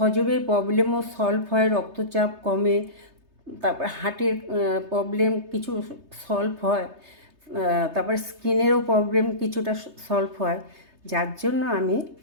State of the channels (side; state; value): left; late; 3.3 ms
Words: প্রবলেমও সলভ হয়, রক্তচাপ কমে, তারপর হার্টের প্রবলেম কিছু সলভ হয়, তারপর স্কিনেরও প্রবলেম কিছুটা সলভ হয়। যার জন্য আমি